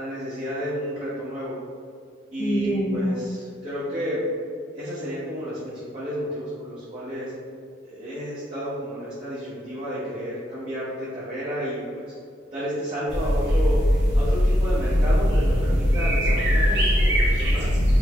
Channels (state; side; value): normal; both; correlation 0.79